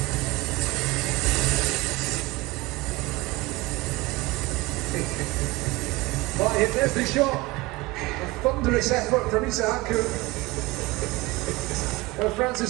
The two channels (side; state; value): left; quieter; 21.7 dB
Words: Right, there's the shot. A thunderous effort from Isaku.